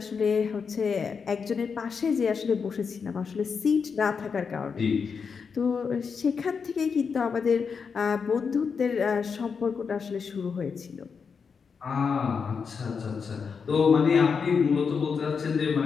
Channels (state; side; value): quieter; right; 5.8 dB